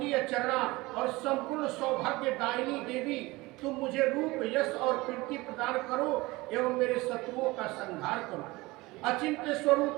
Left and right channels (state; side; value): quieter; left; 21.5 dB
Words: चरणा और संपूर्ण सौभाग्य दायिनी देवी तुम मुझे रूप, यश और कीर्ति प्रदान करो एवं मेरे शत्रुओं का संहार करो। अचिंत्य